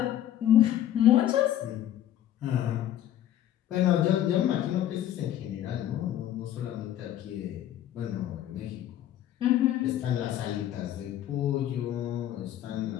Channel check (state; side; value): quieter; right; 11.9 dB